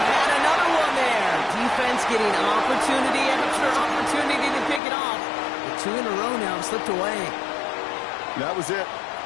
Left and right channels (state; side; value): drops out; right; at 4.8 s